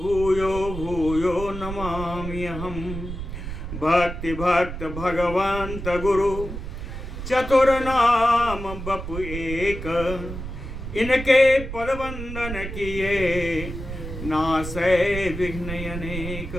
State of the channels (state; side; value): noise; right; rumble, 8 dB below the sound